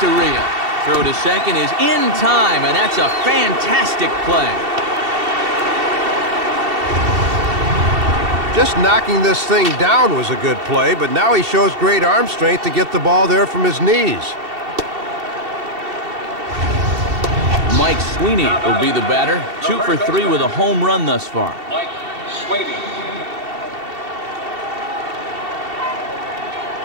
Throw to second is in time, and that's a fantastic play. Just knocking this thing down was a good play, but now he shows great arm strength to get the ball there from his knees. Mike Sweeney will be the batter. 2 for 3 with a home run thus far. Mike Sweeney.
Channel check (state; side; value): late; left; 2.7 ms